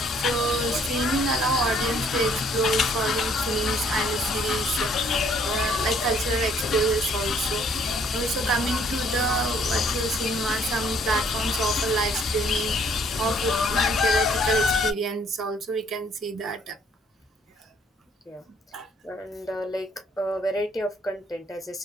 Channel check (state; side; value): normal; both; correlation 0.63